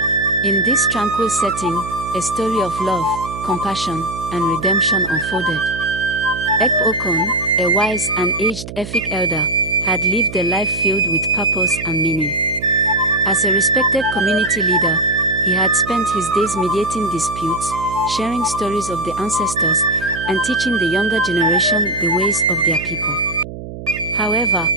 In this tranquil setting, a story of love, compassion, and redemption unfolded. Ek Okon, a wise and aged Efik elder, had lived a life filled with purpose and meaning. As a respected community leader, he had spent his days mediating disputes, sharing stories of the ancestors, and teaching the younger generation the ways of their people. However,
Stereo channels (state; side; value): noise; right; hum, 11 dB below the sound